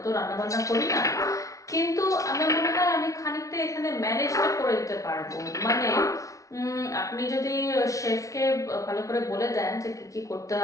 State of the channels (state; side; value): late; right; 0.16 ms